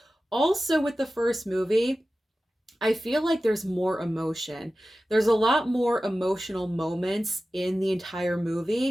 also with the first movie, I feel like there's more emotion. There's a lot more emotional moments in the entire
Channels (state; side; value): normal; both; correlation 0.95